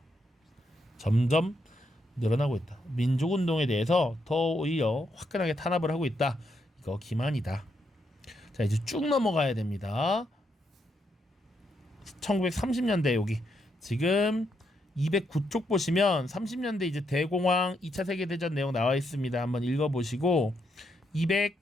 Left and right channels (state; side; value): normal; both; correlation 0.79